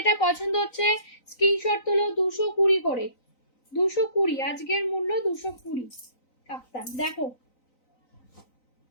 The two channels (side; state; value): right; late; 3.9 ms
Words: পছন্দ হচ্ছে স্ক্রিনশট তুলো। 220 করে, 220 আজকের মূল্য 220। কাপ্তান দেখো,